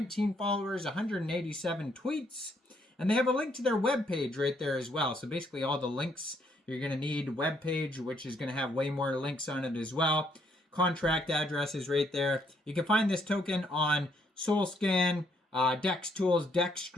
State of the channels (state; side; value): normal; both; correlation 0.71